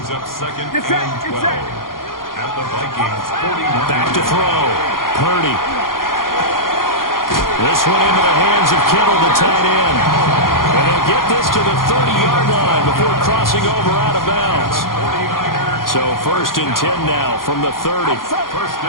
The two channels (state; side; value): late; right; 0.91 ms